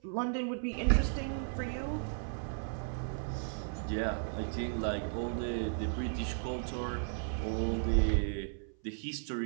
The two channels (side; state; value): left; silent; 54 dB below the other